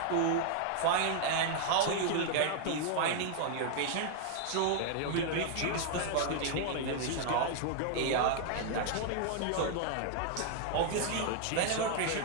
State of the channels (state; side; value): different; both; correlation 0.00